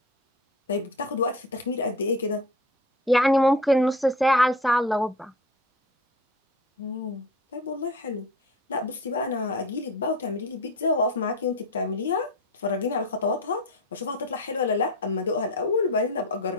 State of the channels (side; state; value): both; normal; correlation 0.33